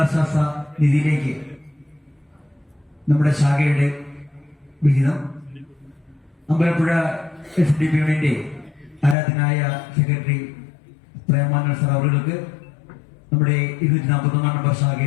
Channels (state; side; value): drops out; right; at 9.2 s